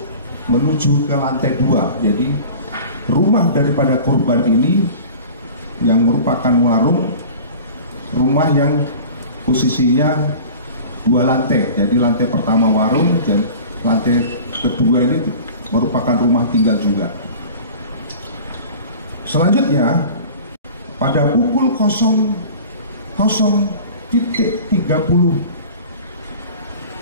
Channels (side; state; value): both; inverted; correlation -0.40